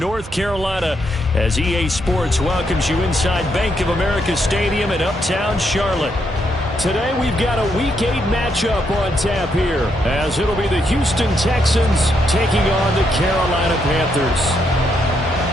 Carolina as EA Sports welcomes you inside Bank of America Stadium in uptown Charlotte. Today we've got a Week 8 matchup on tap here as it'll be the Houston Texans taking on the Carolina Panthers.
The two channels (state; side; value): normal; both; correlation 0.77